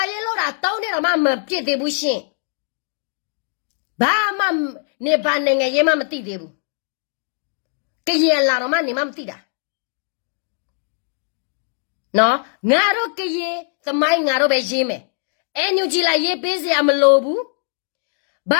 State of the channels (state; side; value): silent; right; 65 dB below the other